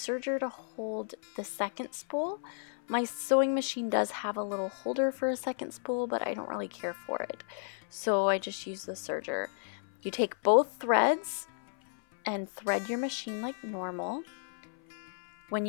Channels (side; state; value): right; silent; 56 dB below the other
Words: to hold the second spool. My sewing machine does have a little holder for a second spool, but I don't really care for it. So I just use the serger. You take both threads and thread your machine like normal. When